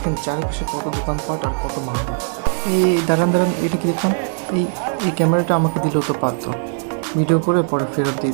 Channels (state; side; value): silent; left; digital silence